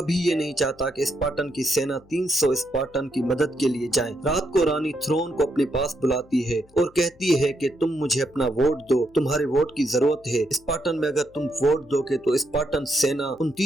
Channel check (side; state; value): left; noise; hum, 29 dB below the sound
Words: ये नहीं चाहता कि स्पार्टन की सेना 300 स्पार्टन की मदद के लिए जाए। रात को रानी थ्रोन को अपने पास बुलाती है और कहती है कि तुम मुझे अपना वोट दो, तुम्हारे वोट की जरूरत है। स्पार्टन में अगर तुम वोट दोगे तो स्पार्टन सेना उन